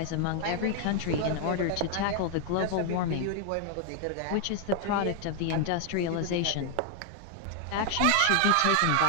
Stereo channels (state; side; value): different; both; correlation 0.00